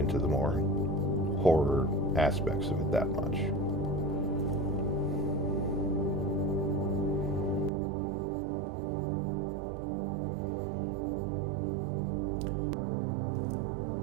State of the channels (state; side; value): drops out; left; at 7.7 s